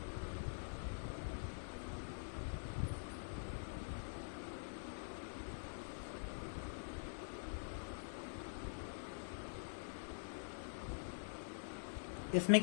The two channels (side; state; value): right; silent; digital silence